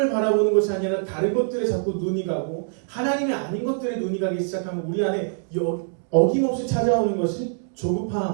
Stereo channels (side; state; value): left; silent; digital silence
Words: 바라보는 것이 아니라 다른 것들에 자꾸 눈이 가고 하나님이 아닌 것들에 눈이 가기 시작하면 우리 안에 어김없이 찾아오는 것이